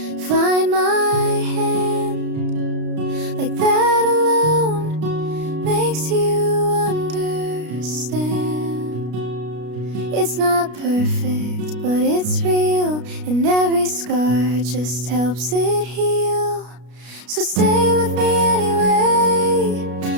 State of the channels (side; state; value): left; late; 33 ms